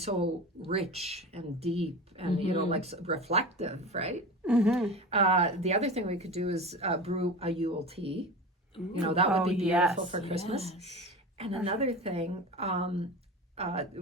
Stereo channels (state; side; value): normal; both; correlation 0.30